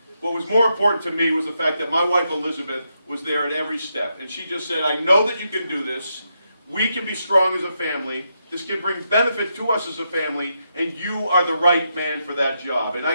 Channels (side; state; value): both; inverted; correlation -0.82